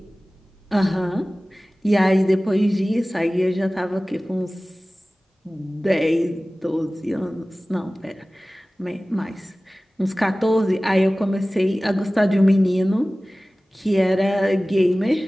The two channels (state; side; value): normal; both; correlation 0.98